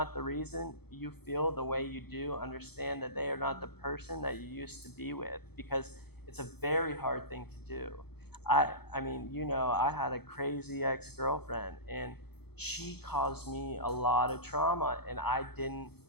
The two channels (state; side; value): late; right; 0.97 ms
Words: the reason you feel the way you do. Understand that they are not the person that you used to be with, because it's a very hard thing to do. I mean, you know, I had a crazy ex-girlfriend, and she caused me a lot of trauma, and I